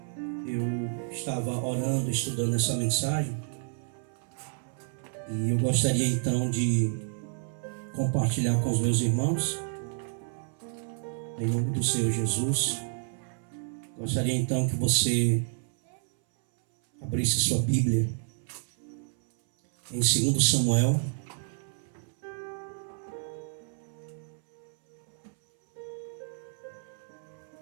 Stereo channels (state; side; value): silent; left; 58 dB below the other